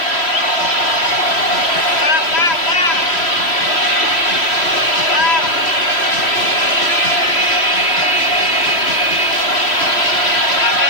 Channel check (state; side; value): late; right; 3.1 ms